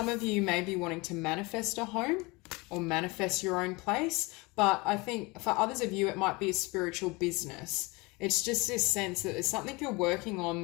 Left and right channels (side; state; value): right; quieter; 25.2 dB